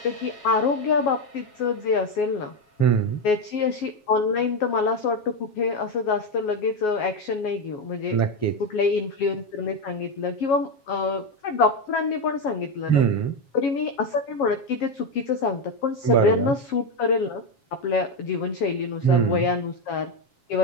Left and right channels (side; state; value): right; late; 7.3 ms